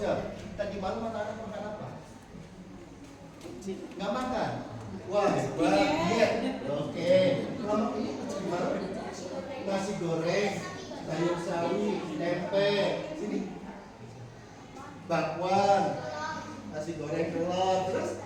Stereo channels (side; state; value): both; identical; correlation 1.00